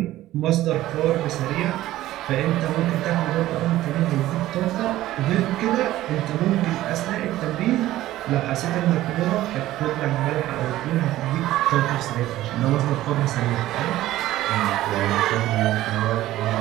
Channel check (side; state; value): left; quieter; 15.1 dB